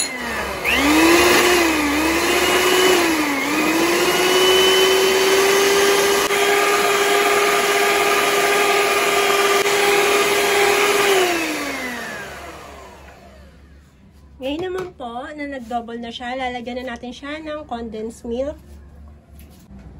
Ngayon naman po, na nag-double na siya, lalagyan na natin siya ng condensed milk.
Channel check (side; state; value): both; identical; correlation 1.00